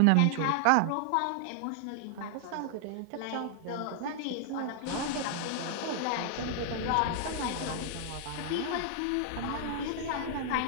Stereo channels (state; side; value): different; both; correlation 0.00